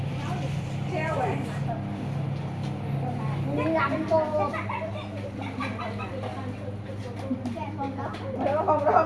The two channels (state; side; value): identical; both; correlation 1.00